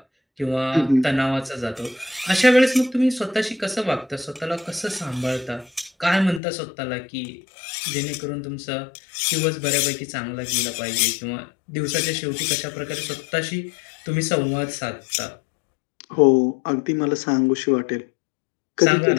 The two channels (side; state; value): right; drops out; at 6.4 s